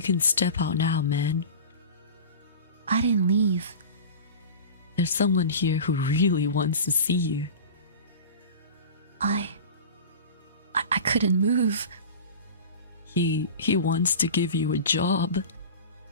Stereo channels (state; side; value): inverted; both; correlation -0.34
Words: can step out now, man. I didn't leave. There's someone here who really wants to see you. I couldn't move. He wants to give you a job.